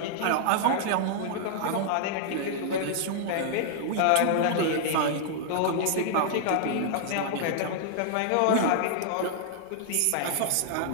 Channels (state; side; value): different; both; correlation -0.01